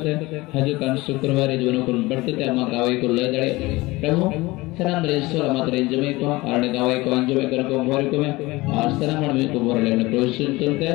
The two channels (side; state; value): right; quieter; 21.2 dB